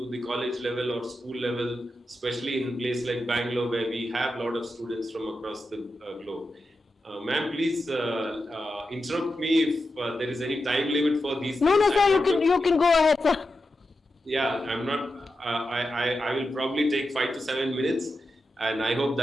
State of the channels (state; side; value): normal; both; correlation 0.89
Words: the college level or school level, especially in a place like Bangalore where we have a lot of students from across the globe. Ma'am, please interrupt me if there is any time limit for these. No, sir, you can go ahead, sir. Yeah, I'm not. I will probably take 5 to 7 minutes, and I hope